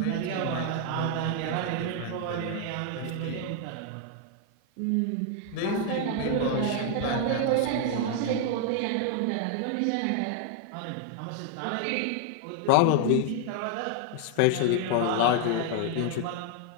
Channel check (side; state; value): both; different; correlation 0.00